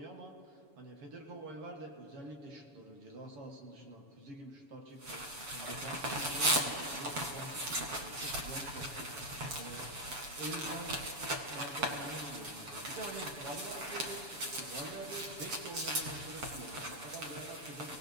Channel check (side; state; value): left; late; 7.1 ms